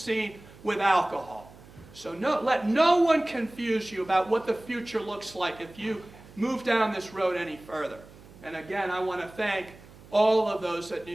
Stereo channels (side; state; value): right; noise; hum, 21 dB below the sound